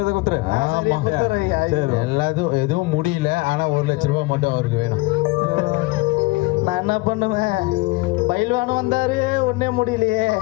கொடுத்துரு. எல்லாத்தையும் எதுவும் முடியல, ஆனா 1 லட்சம் ரூபாய் மட்டும் அவருக்கு வேணும். நான் என்ன பண்ணுவேன்? பயில்வானும் வந்தாரு, ஒன்னே முடியலையே.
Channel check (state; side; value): quieter; right; 23.0 dB